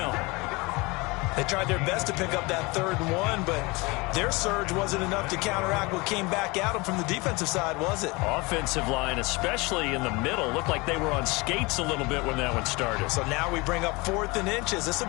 They tried their best to pick up that 3rd and 1, but their surge wasn't enough to counteract what came back at them from the defensive side, was it? Offensive line, especially in the middle, looked like they were on skates a little bit when that one started. So now we bring up 4th and inches. This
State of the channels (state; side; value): quieter; right; 25.0 dB